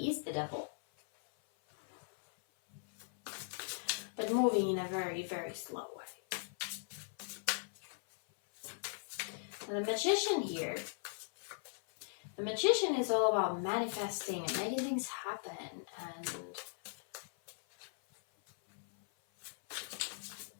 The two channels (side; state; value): right; silent; 52 dB below the other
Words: is the devil. But moving in a very, very slow way. The Magician here. The Magician is all about manifesting and making things happen and